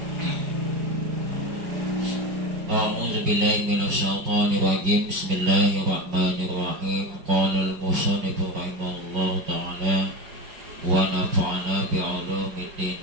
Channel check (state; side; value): late; left; 5.5 ms